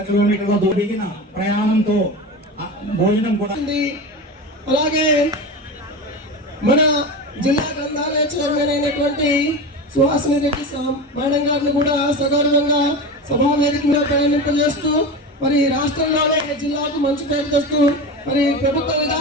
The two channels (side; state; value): both; normal; correlation 0.26